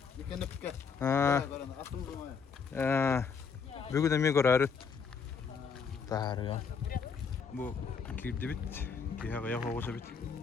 Бүгүн эме көрөрүт. Таарга. Бу кирди бит. Кияга ягоса бит.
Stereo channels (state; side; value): quieter; right; 5.9 dB